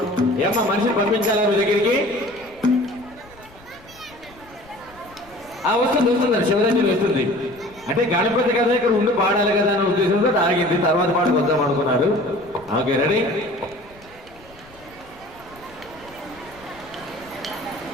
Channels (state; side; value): noise; left; rumble, 25 dB below the sound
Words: ఏమ్మా మనిషిని పంపించాలా నువ్వు దగ్గరికి వస్తుంది వస్తుందండి శివరాత్రి వస్తుంది అంటే గణపతి కదా ఇక్కడ ఉండి పాడాలి కదా అనే ఉద్దేశంతో ఆగింది తర్వాత పాటకు వద్దాం అనుకున్నారు ఓకే రెడీ